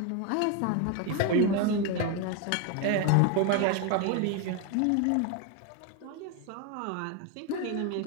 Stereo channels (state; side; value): different; both; correlation 0.02